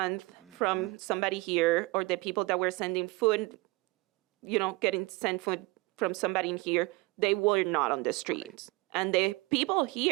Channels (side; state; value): left; quieter; 23.3 dB